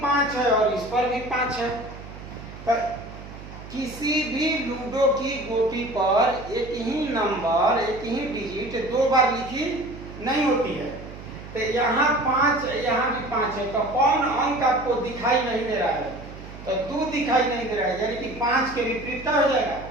5 है और इस पर भी 5 है। तो किसी भी लूडो की गोटी पर एक ही नंबर, एक ही डिजिट 2 बार लिखी नहीं होती है। तो यहाँ 5, यहाँ भी 5 है, तो कौन अंक आपको दिखाई नहीं दे रहा है? तो 2 दिखाई नहीं दे रहा है, यानी कि 5 के विपरीत क्या हो जाएगा?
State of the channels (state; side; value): noise; right; hum, 14 dB below the sound